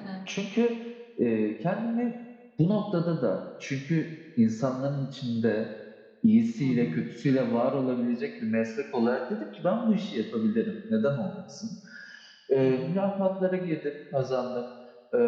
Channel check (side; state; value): both; identical; correlation 1.00